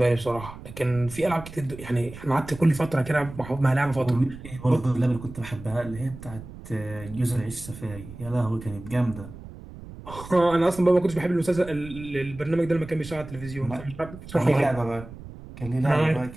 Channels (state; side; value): noise; right; rumble, 14 dB below the sound